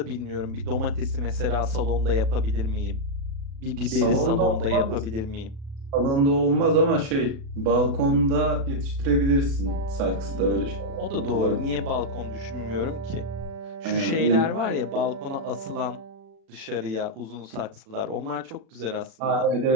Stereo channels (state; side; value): late; left; 36 ms